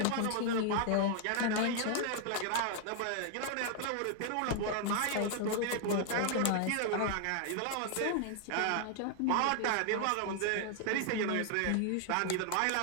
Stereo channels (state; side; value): different; both; correlation 0.00